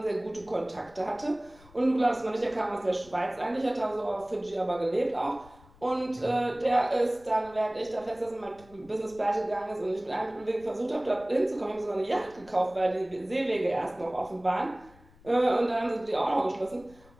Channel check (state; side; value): noise; left; rumble, 25 dB below the sound